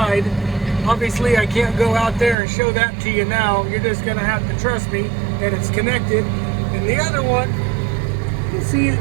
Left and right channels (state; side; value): drops out; left; at 2.4 s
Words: Obviously, I can't go out there and show that to you now. You're just gonna have to trust me that it's connected. And the other one, you see it